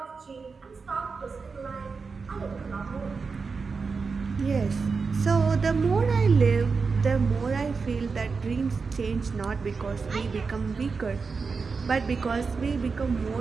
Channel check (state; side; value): quieter; left; 4.8 dB